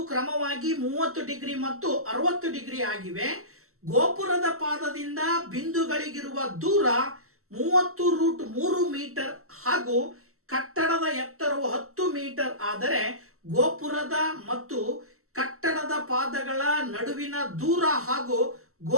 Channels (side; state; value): left; late; 0.63 ms